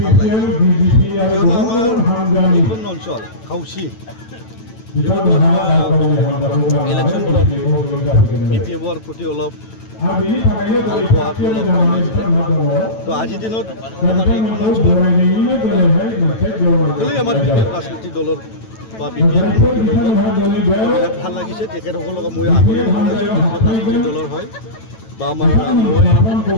কিয়নো আমাৰ এইখন অঞ্চল খাউচি ইলেকশ্যনবোৰত BPF প্ৰতি অলপ ভাল পোৱাটো অলপ কম হৈছিলে তো আজিৰ দিনত আমাৰ এইখন অঞ্চলত আমাৰ BPF ৰাজনৈতিক দলৰ বা BPF বিৰাট ভাল লাগিছে তেখেতসকলক মই আগলৈ ৰাজনৈতিক দলৰ হয় বা আমাৰ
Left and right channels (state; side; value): late; right; 9.1 ms